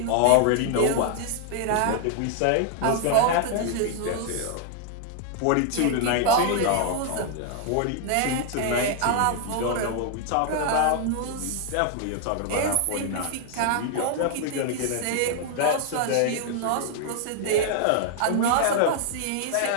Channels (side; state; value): both; different; correlation 0.00